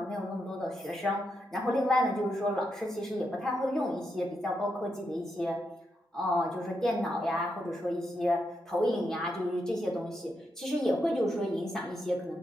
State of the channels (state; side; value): normal; both; correlation 0.83